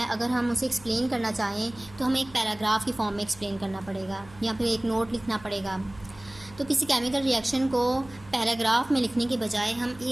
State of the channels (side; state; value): right; noise; hum, 21 dB below the sound